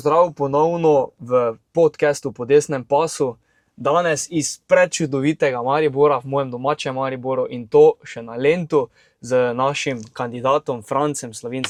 ponovno v podcastu Po desnem pasu. Danes iz prečudovitega Maribora, v mojem domačem Mariboru, in to še na Lentu z našim kandidatom Francem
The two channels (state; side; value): identical; both; correlation 1.00